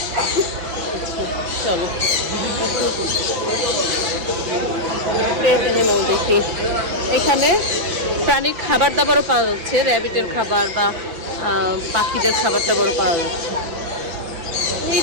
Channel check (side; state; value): left; late; 6.1 ms